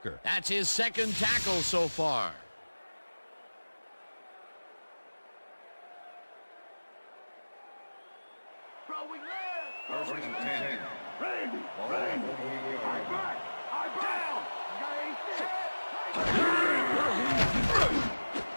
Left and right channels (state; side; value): inverted; both; correlation -1.00